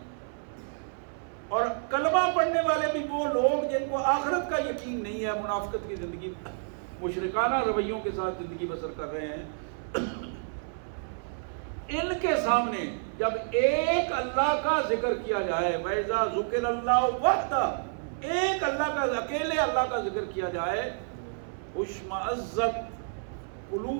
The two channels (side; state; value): left; silent; 58 dB below the other